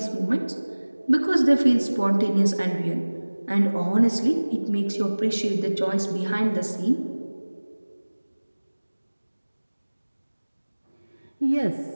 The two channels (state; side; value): inverted; both; correlation -1.00